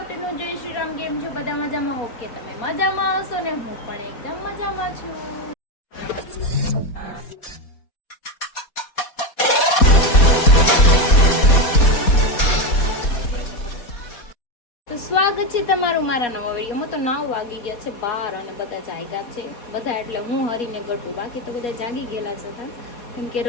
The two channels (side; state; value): right; late; 4.2 ms